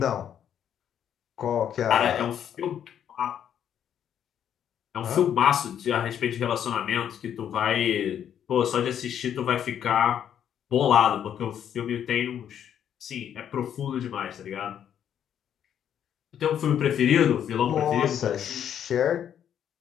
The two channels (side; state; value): right; quieter; 9.4 dB